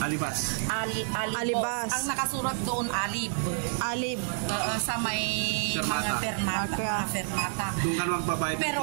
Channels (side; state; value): left; silent; 59 dB below the other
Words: Alibas. Ang nakasurat doon, Alib. Alib. Sa may Fermata. mga fermata. Okay. Fermata. Doon ka magbabayad.